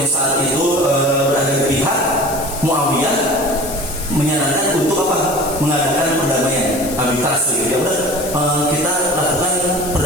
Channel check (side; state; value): left; noise; hiss, 11 dB below the sound